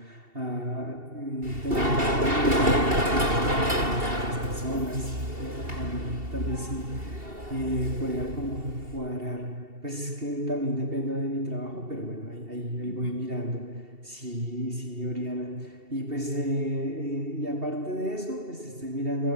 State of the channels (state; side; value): late; left; 2.7 ms